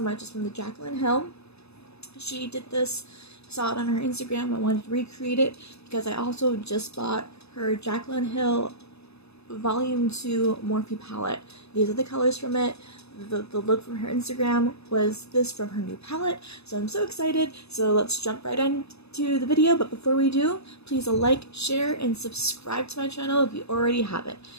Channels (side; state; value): right; late; 0.79 ms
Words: It's from the Jaclyn Hill. She did this, saw it on her Instagram. I wanted to recreate it because I also just bought her Jaclyn Hill Volume 2 Morphe palette. These are the colors from it. The look from her Instagram was this from her new palette, so I'm so excited. So let's jump right into the video, but before we do, please like, share, and subscribe to my channel if you already haven't.